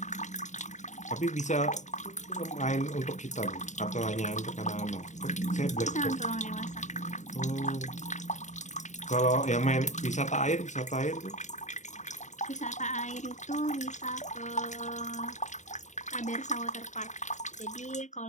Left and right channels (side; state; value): right; late; 0.35 ms